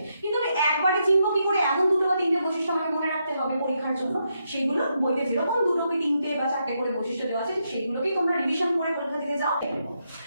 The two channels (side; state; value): both; inverted; correlation -0.81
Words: কিন্তু আমি একবারে চিনব কি করে এমন 2 বা 3টে বৈশিষ্ট্য আমাকে মনে রাখতে হবে পরীক্ষার জন্য। সেইগুলো বইতে যেরকম 2 কি 3টে বা 4টে করে বৈশিষ্ট্য দেওয়া আছে সেইগুলোকেই তোমরা রিভিশন করে পরীক্ষা দিতে যাও।